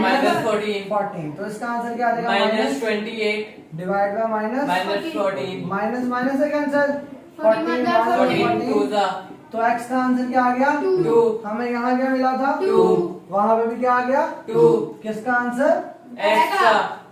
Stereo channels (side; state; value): both; identical; correlation 1.00